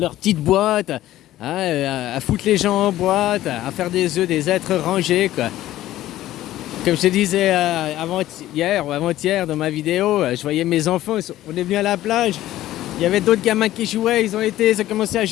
petite boîte, hein, à foutre les gens en boîte, à faire des œufs, des êtres rangés, quoi. Comme je te disais hier ou avant-hier dans ma vidéo, je voyais mes enfants, on est venus à la plage. Il y avait d'autres gamins qui jouaient, ils ont commencé à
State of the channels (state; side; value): quieter; right; 14.4 dB